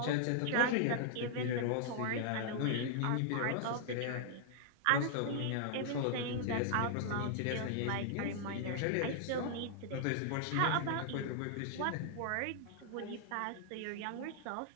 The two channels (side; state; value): both; different; correlation -0.01